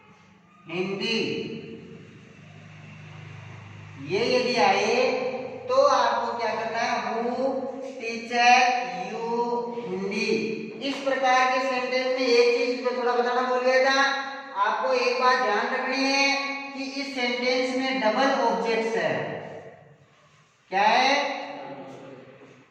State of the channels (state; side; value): identical; both; correlation 1.00